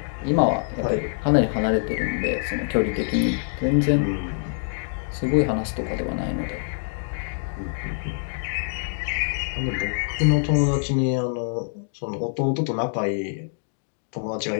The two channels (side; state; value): right; silent; digital silence